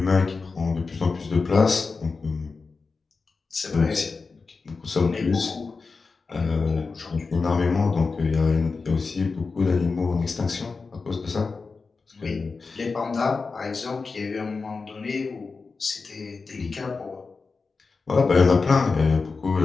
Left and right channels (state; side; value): quieter; right; 4.4 dB